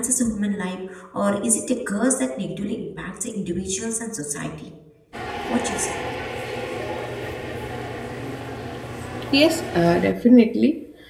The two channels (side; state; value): both; identical; correlation 1.00